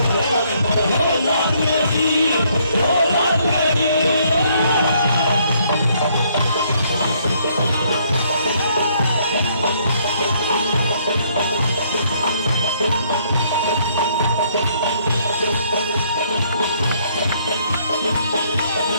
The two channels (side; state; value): both; inverted; correlation -0.68